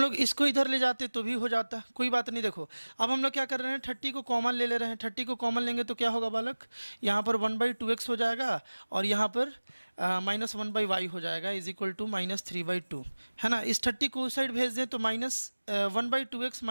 लोग इसको इधर ले जाते तो भी हो जाता, कोई बात नहीं। देखो अब हम लोग क्या कर रहे हैं, 30 को कॉमन ले रहे हैं। 30 को कॉमन लेंगे तो क्या होगा बालक, यहाँ पर 1/2x हो जाएगा और यहाँ पर -1/y हो जाएगा इज इक्वल टू -3/2, है ना। इस 30 को उस साइड भेज दें तो -1/2x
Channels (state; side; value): inverted; both; correlation -1.00